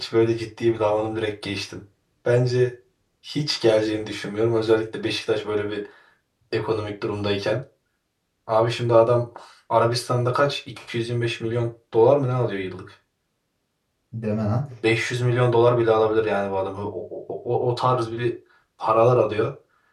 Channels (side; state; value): both; identical; correlation 1.00